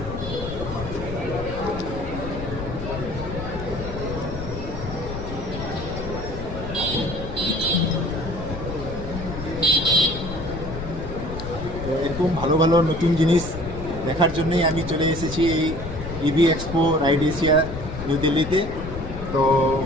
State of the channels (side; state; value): left; noise; rumble, 8 dB below the sound